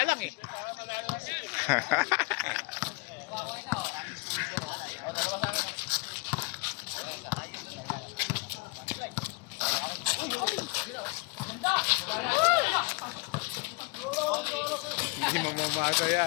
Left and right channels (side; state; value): right; quieter; 28.4 dB